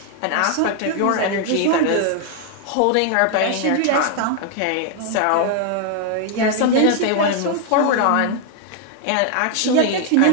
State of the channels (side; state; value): both; different; correlation 0.00